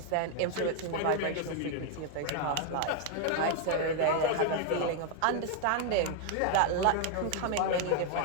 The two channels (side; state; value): both; different; correlation 0.00